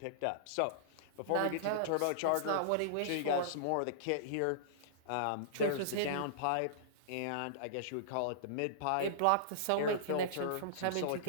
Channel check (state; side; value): different; both; correlation -0.02